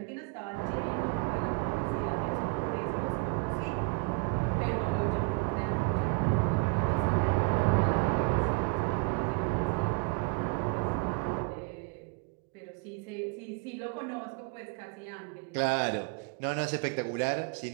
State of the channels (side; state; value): left; quieter; 27.5 dB